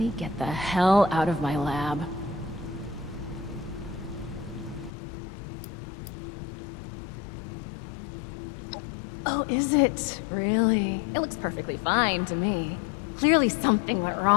get the hell out of my lab? Oh, is it? Really? It looks perfectly fine to me. Clearly something went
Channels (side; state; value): right; drops out; at 4.9 s